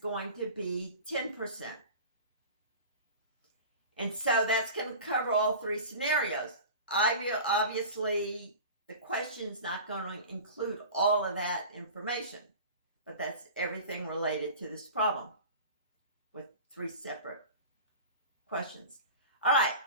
to be 10%. And so that's going to cover all 3 scenarios. Obviously, the question's not going to include all of that information, but that's everything related to this problem with 3 separate questions. All right,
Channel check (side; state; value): both; inverted; correlation -0.36